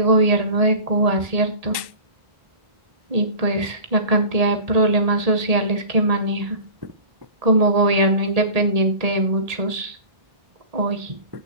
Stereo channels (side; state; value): left; late; 1.1 ms